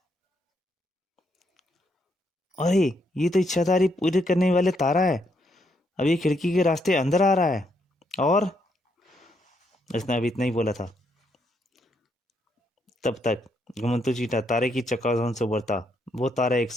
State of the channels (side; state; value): both; normal; correlation 0.76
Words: अरे, ये तो इच्छाधारी पूरी करने वाले तारा है। अब ये खिड़की के रास्ते अंदर आ रहा है। और उसने अभी इतना ही बोला था। तब तक घुमंतू चींटा तारे की चकाचौंध से उभरता वो तारा एक